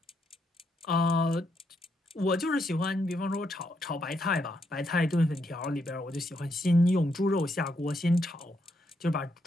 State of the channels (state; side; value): normal; both; correlation 0.78